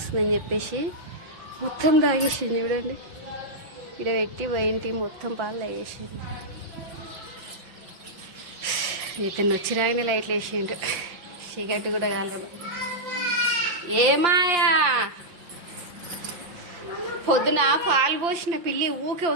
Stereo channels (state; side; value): late; left; 5.8 ms